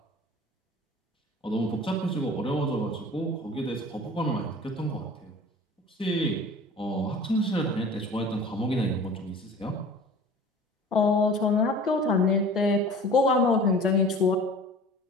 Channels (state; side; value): normal; both; correlation 0.42